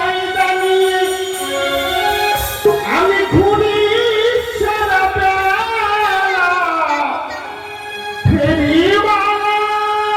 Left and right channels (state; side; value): identical; both; correlation 1.00